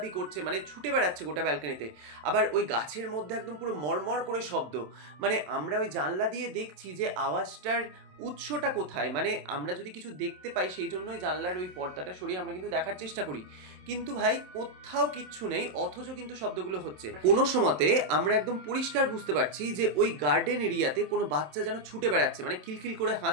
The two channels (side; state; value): left; late; 27 ms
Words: করছে, মানে ছুটে বেড়াচ্ছে গোটা ব্যালকনিতে। আবার ওই গাছের মধ্যে একদম পুরো মরমর করে শব্দ, মানে আমরা ওই জানলা দিয়ে দেখছি যে আওয়াজটার উৎসটা কোথায়, মানে আমরা যদি কিছু দেখতে পাই সেই জন্যই জানলার ওই পর্দাটা সরিয়ে আমরা কিন্তু দেখার চেষ্টা করি, কিন্তু ভাই কোথাও কিচ্ছু নেই, অথচ কিন্তু শব্দগুলো হচ্ছে। কোনো সময়তে আমরা একদম পরিষ্কার বুঝতে পারছি যে ওই গার্ডেন এরিয়াতে কোনো বাচ্চা যেন ছুটে বেড়াচ্ছে, মানে খিলখিল করে